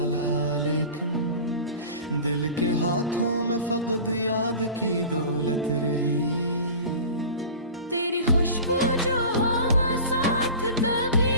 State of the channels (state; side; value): inverted; both; correlation -0.37